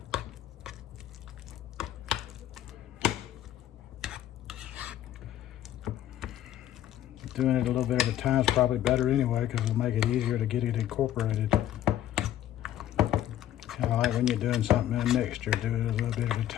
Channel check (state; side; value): quieter; right; 12.1 dB